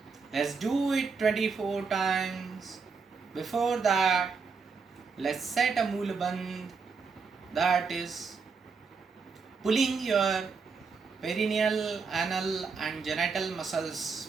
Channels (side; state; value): left; quieter; 5.1 dB